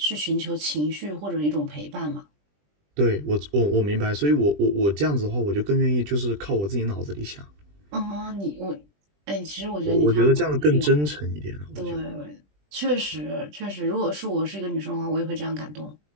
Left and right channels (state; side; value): late; left; 20 ms